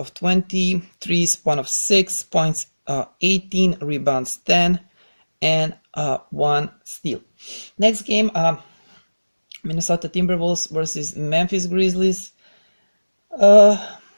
20, threes 1 of 6 points, 18 rebounds, 10 and 1 steal. Next game, Minnesota Timberwolves versus Memphis Grizzlies.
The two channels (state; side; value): inverted; both; correlation -1.00